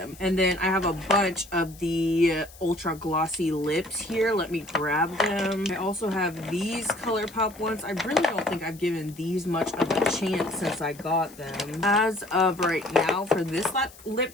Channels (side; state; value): left; noise; hiss, 21 dB below the sound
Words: And then I have a bunch of the ultra glossy lips here. Let me grab them. I also have these ColourPop ones. I really don't think I've given these much of a chance since I got them. As of right now, for this lip